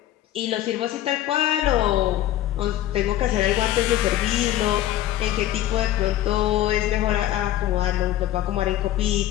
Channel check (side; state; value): right; quieter; 13.3 dB